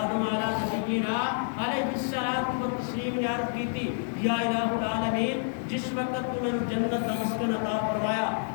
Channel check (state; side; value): silent; right; digital silence